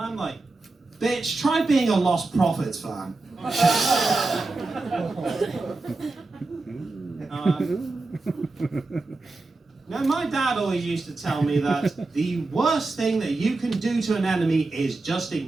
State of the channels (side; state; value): left; quieter; 3.4 dB